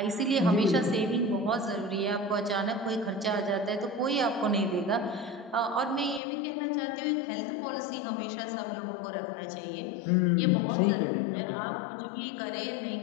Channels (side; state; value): right; drops out; at 6.2 s